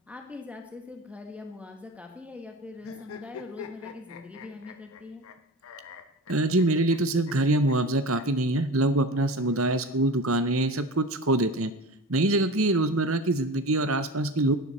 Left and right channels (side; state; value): both; normal; correlation 0.32